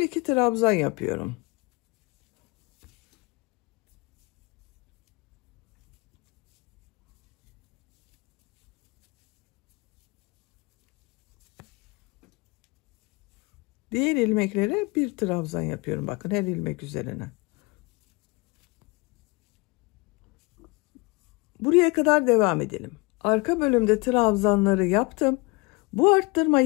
2 trabzan yapıyorum. Diğer ilmeklere bir trabzan yapıyorum. Bakın her ilmek üzerine. Buraya kadar devam edelim. Arka bölümde trabzanları yaptım. Bu arttırma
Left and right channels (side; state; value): right; quieter; 26.3 dB